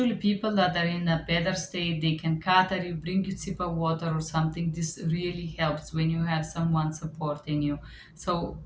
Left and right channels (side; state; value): both; identical; correlation 1.00